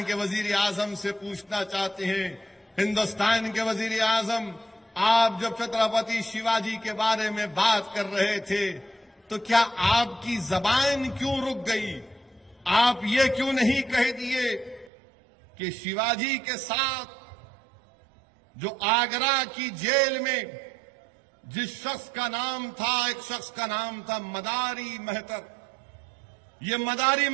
کے وزیر اعظم سے پوچھنا چاہتے ہیں، ہندوستان کے وزیر اعظم، آپ جب چھترپتی شیواجی کے بارے میں بات کر رہے تھے تو کیا آپ کی زبان کیوں رک گئی؟ آپ یہ کیوں نہیں کہہ دیے کہ شیواجی کے ساتھ جو آگرہ کی جیل میں جس شخص کا نام تھا، ایک شخص کا نام تھا مداری مہتر، یہ مداری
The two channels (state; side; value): drops out; left; at 14.9 s